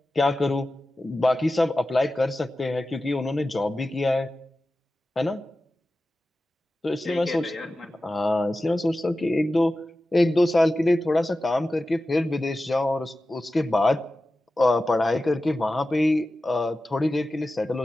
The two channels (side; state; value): both; normal; correlation 0.94